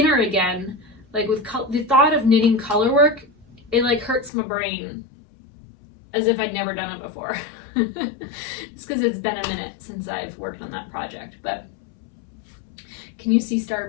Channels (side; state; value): right; drops out; at 4.3 s